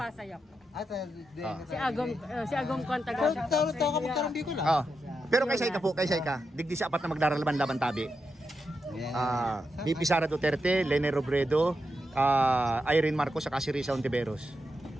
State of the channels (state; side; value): normal; both; correlation 0.86